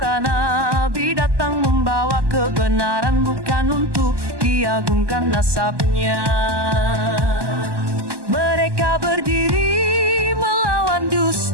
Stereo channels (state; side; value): late; left; 1.2 ms